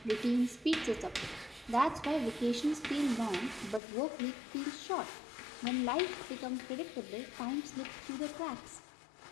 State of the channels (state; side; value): drops out; right; at 3.8 s